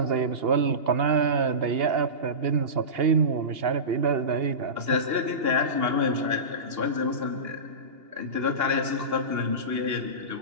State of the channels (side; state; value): left; late; 2.8 ms